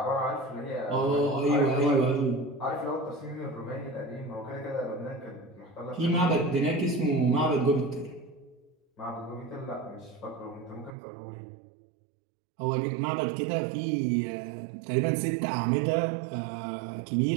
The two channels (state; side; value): drops out; left; at 11.0 s